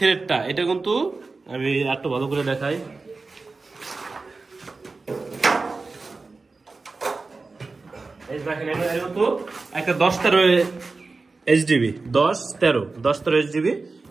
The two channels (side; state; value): left; quieter; 3.9 dB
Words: এটা কিন্তু আমি একটু ভালো করে দেখাই, এই দেখেন এর কিন্তু একটা 10-13 এইচডিবি, 10-13 এইচডিবি,